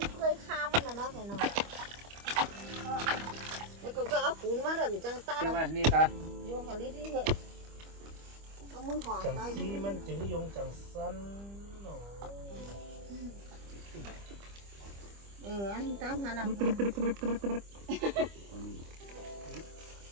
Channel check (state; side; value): late; left; 25 ms